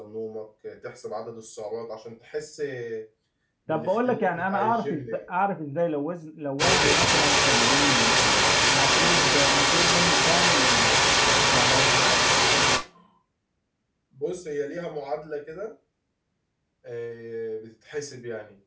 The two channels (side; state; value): both; identical; correlation 1.00